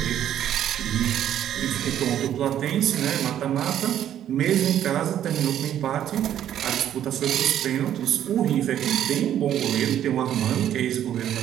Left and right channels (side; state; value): left; quieter; 10.8 dB